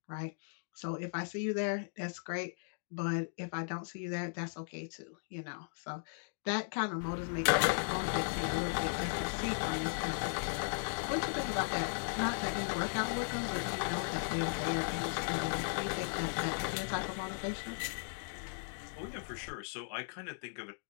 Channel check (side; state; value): right; silent; digital silence